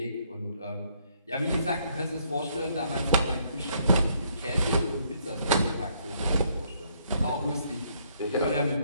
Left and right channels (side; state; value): both; inverted; correlation -0.69